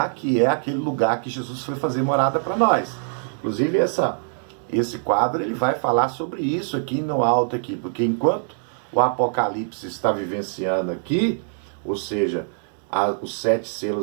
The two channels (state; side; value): silent; left; digital silence